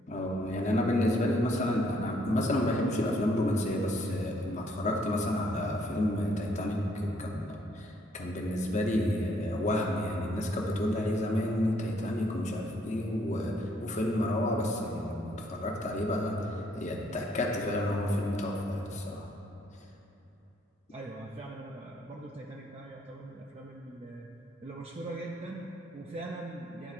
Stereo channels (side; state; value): both; normal; correlation 0.68